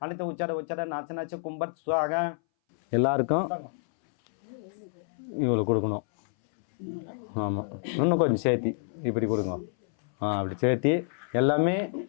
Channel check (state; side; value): silent; right; 59 dB below the other